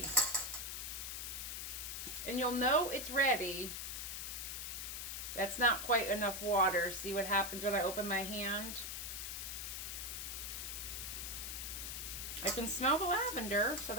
And you'll know it's ready. That's not quite enough water. See what happens when I open my hand? I can smell the lavender, so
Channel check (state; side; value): noise; left; hiss, 5 dB below the sound